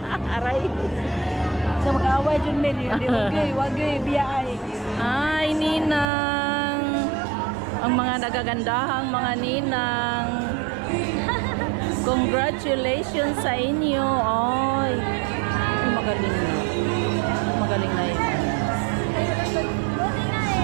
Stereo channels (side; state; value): left; drops out; at 6.1 s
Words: Aray. Isa mag-away, Jud may. Wagay, biyay. Ay, ninang. Ang mga nagagandahang mga ninang. Congratulations sa inyo. Ay, magaling na. Magaling na yun.